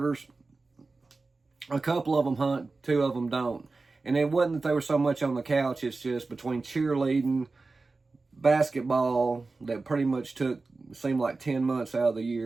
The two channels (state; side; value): quieter; left; 3.7 dB